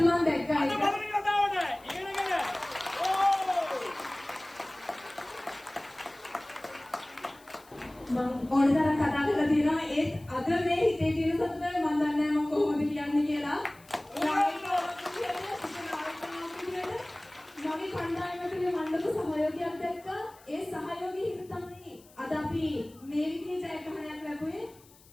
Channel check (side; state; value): left; noise; hiss, 26 dB below the sound